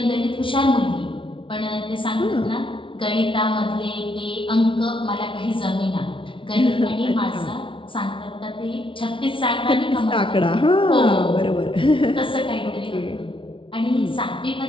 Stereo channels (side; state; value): right; late; 0.25 ms